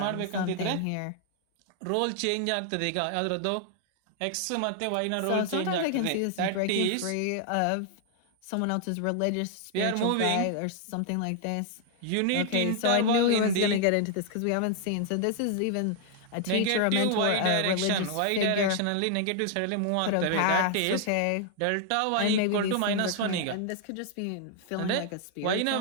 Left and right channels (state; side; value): different; both; correlation 0.00